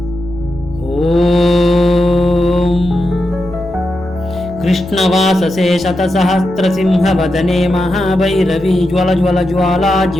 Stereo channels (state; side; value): normal; both; correlation 0.87